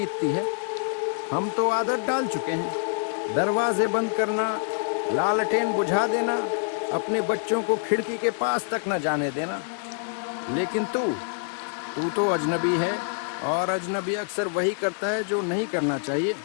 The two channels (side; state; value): right; silent; digital silence